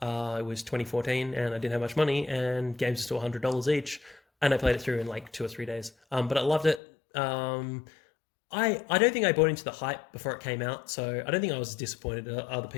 it was 2014 and I didn't have much money and games are still $100 each. And I played it through in like 2 or 3 days. But I loved it. I don't think I bought into the hype before it came out, so I don't think I was as disappointed as other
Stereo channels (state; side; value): drops out; right; at 6.8 s